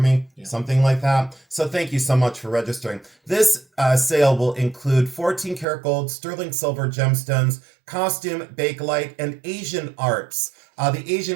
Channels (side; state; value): left; drops out; at 5.7 s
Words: something like that. So thank you so much for registering. This sale will include 14 karat gold, sterling silver gemstones, costume, bakelite, and Asian arts. The